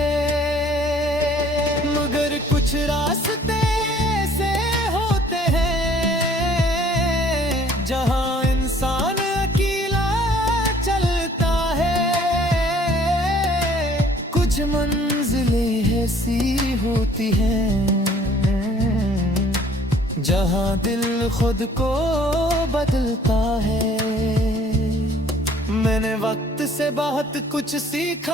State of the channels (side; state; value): both; normal; correlation 0.57